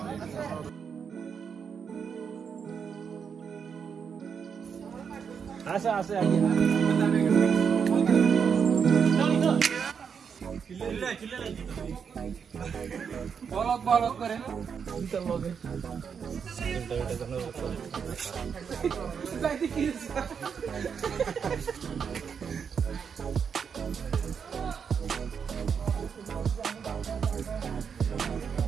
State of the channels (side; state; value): left; quieter; 6.7 dB